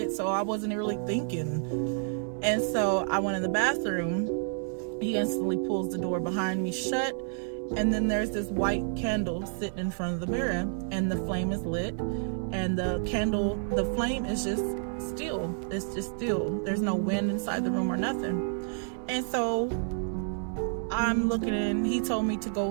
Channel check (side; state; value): left; silent; 58 dB below the other